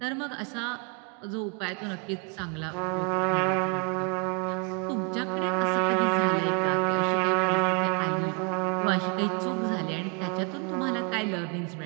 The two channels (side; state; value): left; quieter; 35.1 dB